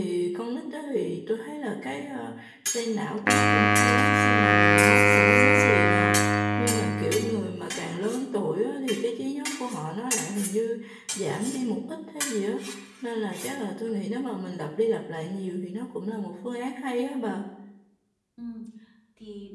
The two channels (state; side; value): identical; both; correlation 1.00